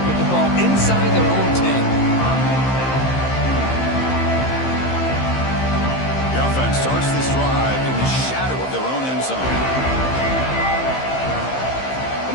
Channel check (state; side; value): late; right; 15 ms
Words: the ball inside their own 10. The offense starts this drive in the shadow of their own end zone.